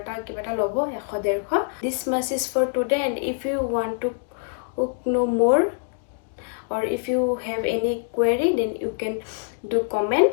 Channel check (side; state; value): right; silent; digital silence